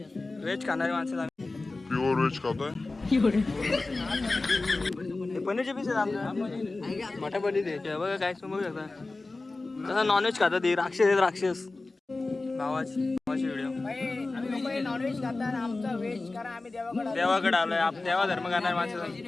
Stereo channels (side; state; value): right; quieter; 3.3 dB